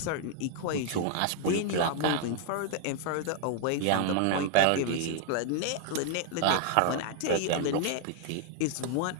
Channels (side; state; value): both; different; correlation 0.00